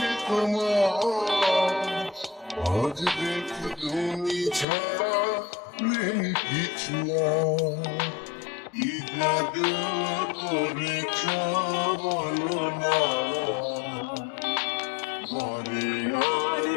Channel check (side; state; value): right; drops out; at 4.7 s